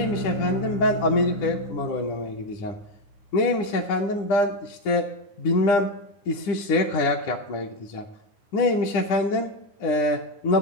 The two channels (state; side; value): late; right; 10 ms